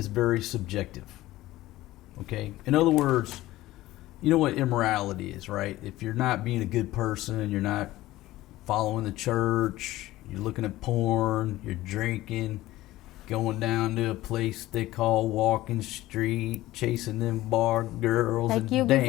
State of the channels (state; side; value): quieter; right; 16.6 dB